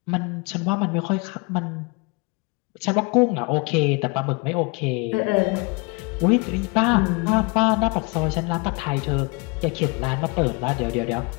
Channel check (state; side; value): quieter; right; 29.0 dB